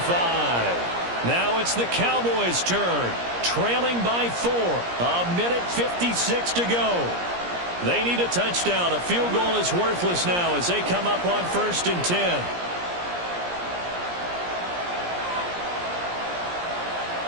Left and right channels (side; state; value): left; late; 17 ms